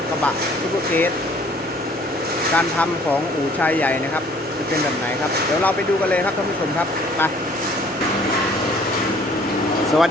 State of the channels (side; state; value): both; normal; correlation 0.56